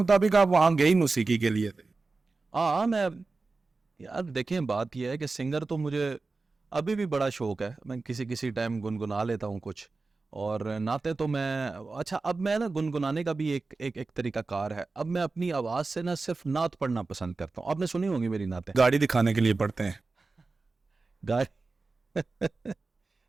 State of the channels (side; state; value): left; quieter; 3.8 dB